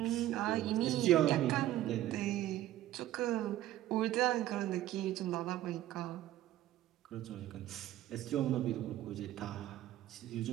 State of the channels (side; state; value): left; quieter; 14.0 dB